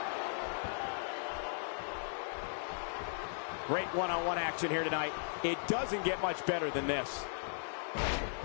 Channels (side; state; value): right; silent; digital silence